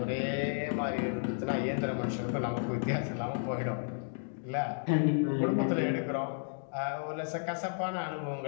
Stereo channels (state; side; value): silent; right; digital silence